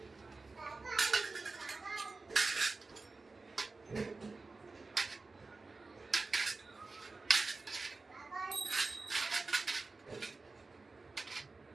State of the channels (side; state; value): left; quieter; 3.8 dB